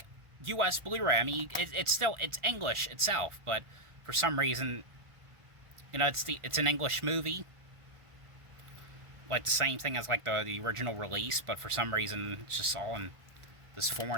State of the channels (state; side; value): late; left; 1.4 ms